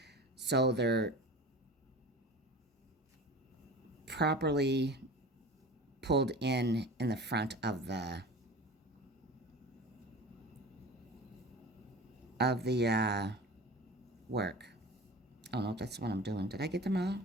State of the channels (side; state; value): both; normal; correlation 0.36